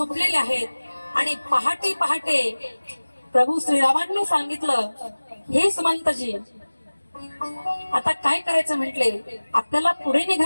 आहेत. आणि पहाटे प्रभू श्रीरामांनी सांगितलं, हे सुमंतजी, आता काय करायचं म्हटले, आपल्याला पुढे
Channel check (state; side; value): inverted; both; correlation -1.00